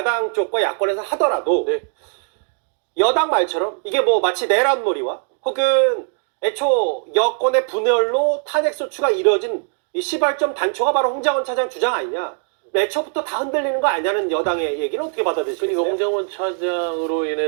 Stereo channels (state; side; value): silent; left; 55 dB below the other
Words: 쪽과 야권에서 하더라도 네. 여당 말처럼 이게 뭐 마치 내란놀이와 혹은 애초 여권의 분열로 탄핵소추가 이뤄진 이 시발점 단초가 바로 홍장원 차장 주장 아니냐. 애초부터 다 흔들리는 거 아니냐는 여당의 얘기는 어떻게 받아들이시겠어요? 그러니까 홍장원 차장으로